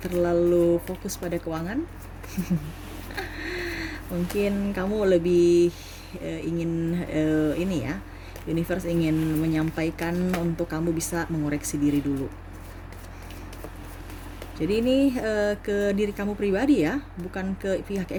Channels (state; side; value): identical; both; correlation 1.00